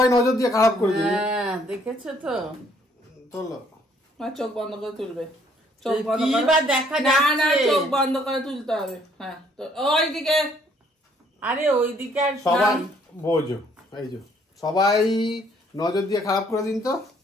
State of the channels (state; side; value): normal; both; correlation 0.64